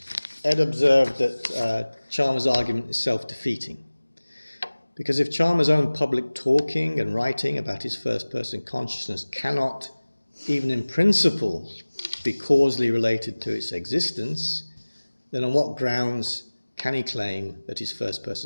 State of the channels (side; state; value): both; inverted; correlation -1.00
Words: Ed observed that Chalmers' argument is self-defeating. Because if Chalmers' own public talking and writing about his first-person consciousness cannot, even in principle, be causally related to its existence, then on what grounds can he claim that his